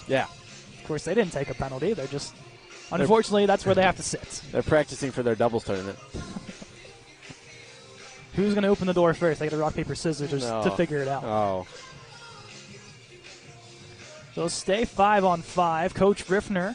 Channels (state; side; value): identical; both; correlation 1.00